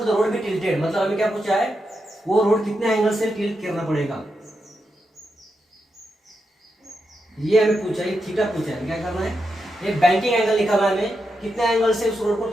the road be tilted. मतलब हमें क्या पूछा है, वो रोड कितने एंगल से टिल्ट करना पड़ेगा, ये हमें पूछा है। थीटा पूछा है, क्या करना है, ये बैंकिंग एंगल निकालना है। हमें कितने एंगल से उस रोड को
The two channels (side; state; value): both; normal; correlation 0.86